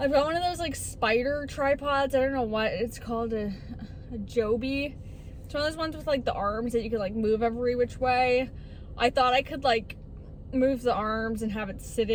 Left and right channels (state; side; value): identical; both; correlation 1.00